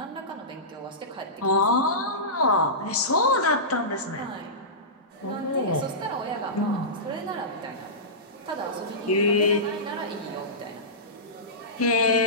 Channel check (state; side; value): normal; both; correlation -0.19